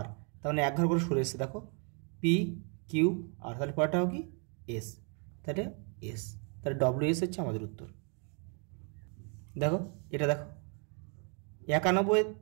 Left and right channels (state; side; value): quieter; left; 38.1 dB